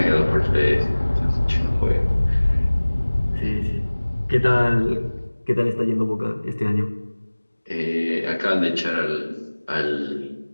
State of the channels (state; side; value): inverted; both; correlation -1.00